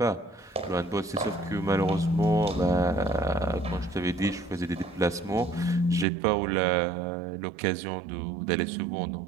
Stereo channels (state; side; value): drops out; left; at 6.1 s